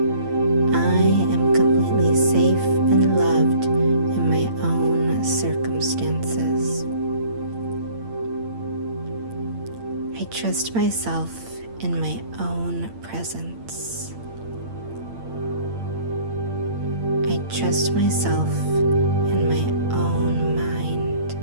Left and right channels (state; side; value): late; left; 8.8 ms